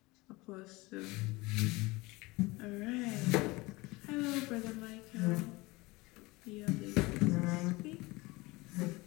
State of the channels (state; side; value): quieter; right; 22.6 dB